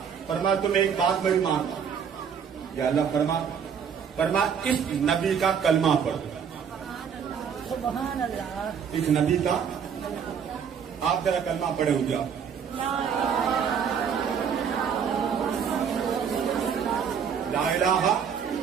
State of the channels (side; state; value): left; quieter; 7.2 dB